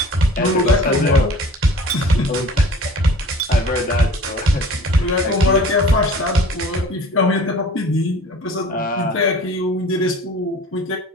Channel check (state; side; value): normal; both; correlation 0.45